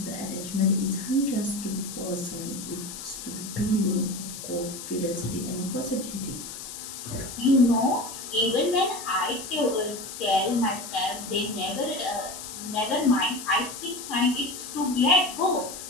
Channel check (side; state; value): left; noise; hiss, 10 dB below the sound